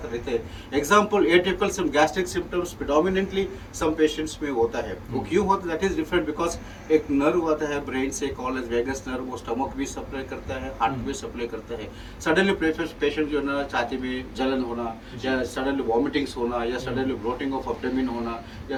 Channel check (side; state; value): both; identical; correlation 1.00